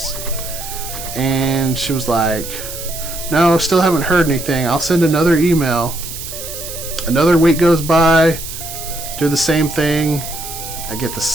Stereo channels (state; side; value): noise; right; hiss, 9 dB below the sound